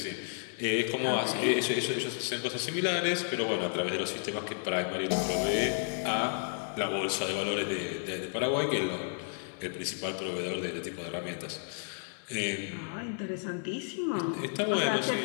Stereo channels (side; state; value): right; silent; 56 dB below the other